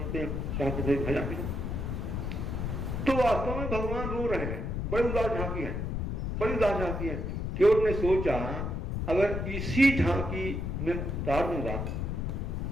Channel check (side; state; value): left; noise; rumble, 2 dB below the sound